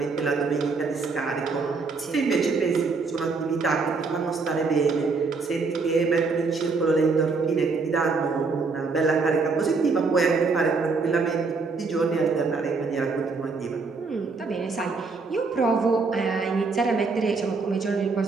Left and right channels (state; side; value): quieter; left; 4.3 dB